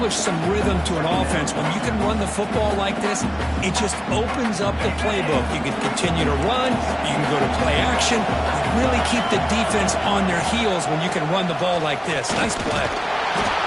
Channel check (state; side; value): identical; both; correlation 1.00